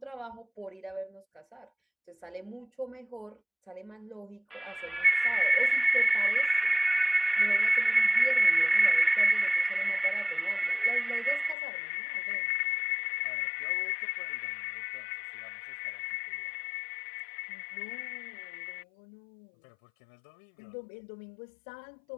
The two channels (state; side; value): drops out; right; at 11.6 s